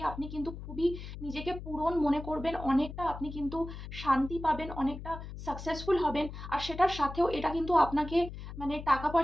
আপনি কিন্তু খুবই নিজেকে পূরণ মনে করবেন। অনেকটা আপনি কিন্তু শান্তি পাবেন, অনেকটা সাকসেসফুল হবেন। আর সেটার সাথেও এটা কিন্তু আপনাকে মানে টাকা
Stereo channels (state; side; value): noise; left; hum, 10 dB below the sound